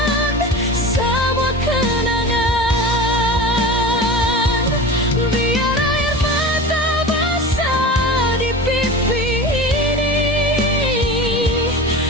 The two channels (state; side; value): normal; both; correlation 0.31